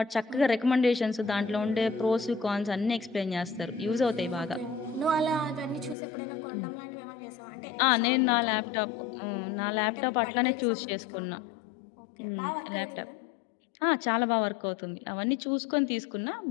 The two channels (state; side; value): drops out; right; at 6.0 s